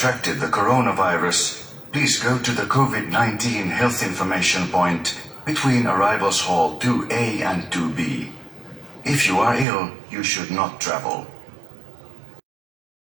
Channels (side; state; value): left; drops out; at 9.7 s